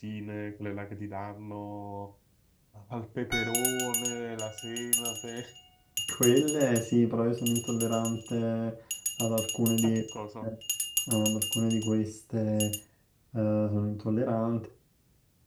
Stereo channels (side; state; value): both; identical; correlation 1.00